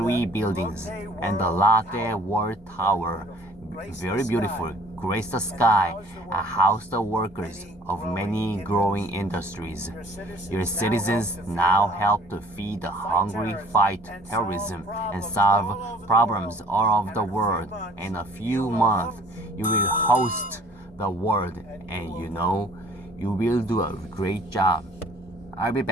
buildings and the Lotte World Tower, very beautiful, grace the sky, and house the workers of many growing industries. Your citizens now help to feed the hungry, fight terrorism, and solve problems all over the world. In a few months, you will host the world, and you know you will do a great job. I'll be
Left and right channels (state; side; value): normal; both; correlation 0.53